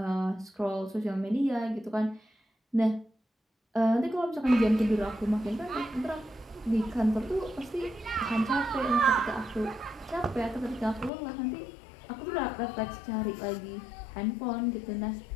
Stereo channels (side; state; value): right; drops out; at 11.1 s